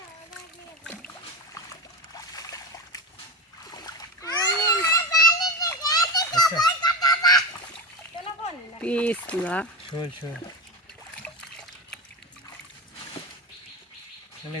আচ্ছা পিছলা শোল চলে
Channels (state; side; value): normal; both; correlation 0.18